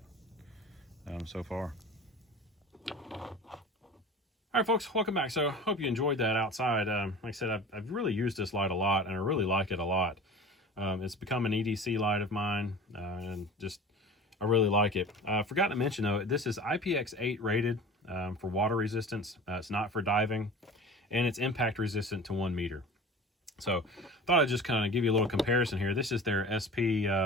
so far. All right, folks, welcome back. So hope you enjoyed that outside. Like I said, I've really used this light a lot, and I really like it a lot. It's become an EDC light of mine, and just I really like it. I forgot to mention, though, this is IPX8 rated for water resistance. It's not for diving, and it's impact resistant to 1 meter. So thought I'd just kind of give you a little comparison here. This is their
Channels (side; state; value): both; normal; correlation 0.38